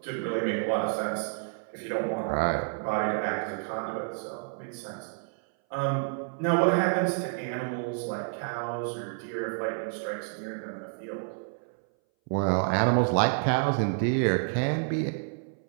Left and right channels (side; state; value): left; silent; 58 dB below the other